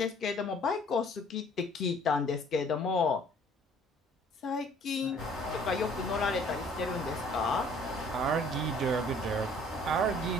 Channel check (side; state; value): both; normal; correlation 0.56